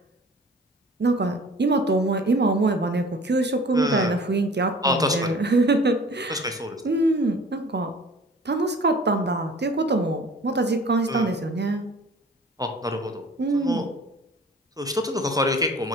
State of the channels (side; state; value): both; normal; correlation 0.47